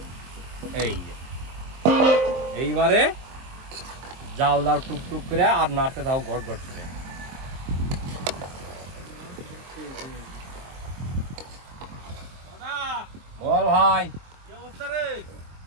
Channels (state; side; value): late; left; 23 ms